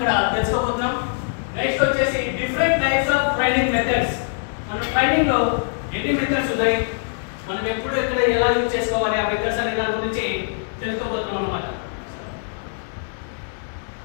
తెలుసుకోబోతున్నాం. నెక్స్ట్ వచ్చేసి different types of training methods. మన ట్రైనింగ్ లో ఎన్ని మెథడ్స్ ఉన్నాయి, మనం ఎప్పుడు ఎక్కడ ఎలా యూజ్ చేసుకోవాలి ఆ మెథడ్స్ అనే దాని గురించి తెలుసుకోబోతున్నాం అన్నమాట.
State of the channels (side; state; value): right; silent; digital silence